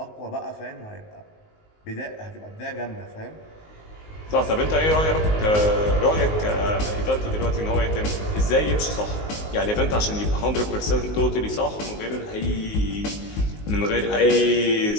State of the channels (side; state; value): right; late; 19 ms